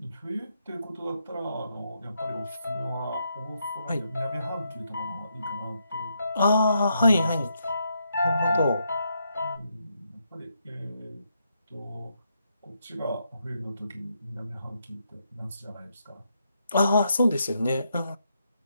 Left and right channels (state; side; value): inverted; both; correlation -0.79